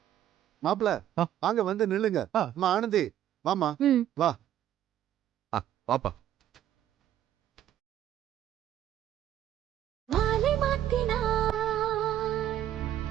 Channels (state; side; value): quieter; left; 11.7 dB